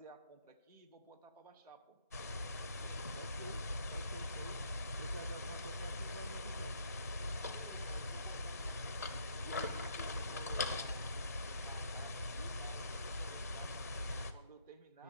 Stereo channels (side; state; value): both; inverted; correlation -0.68